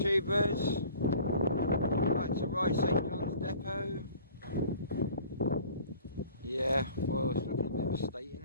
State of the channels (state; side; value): inverted; both; correlation -0.49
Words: back to Wight St John's Depot. Yeah, well, it's looking a bit of a state,